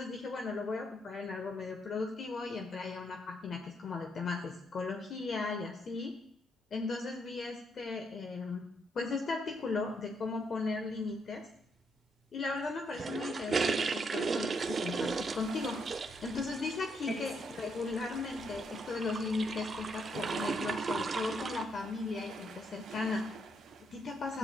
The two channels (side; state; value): both; normal; correlation 0.75